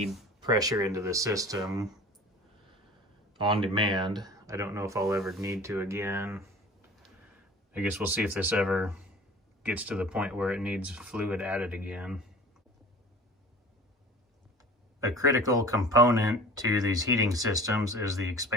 pressure into the system on demand. I don't know if I'll ever need to again. I guess we'll see if this ever gets to the point where it needs fluid added again. A critical component to these heating systems is the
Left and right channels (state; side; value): normal; both; correlation 0.42